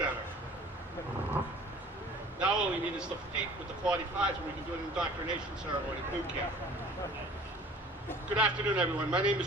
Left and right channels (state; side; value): normal; both; correlation 0.48